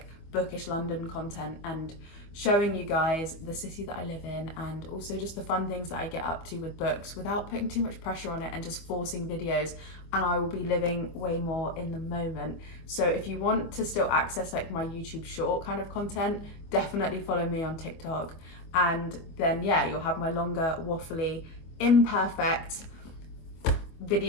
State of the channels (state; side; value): late; right; 25 ms